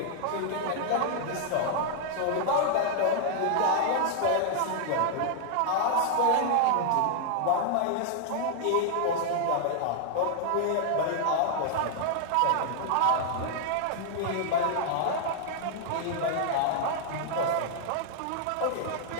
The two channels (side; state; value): both; different; correlation -0.01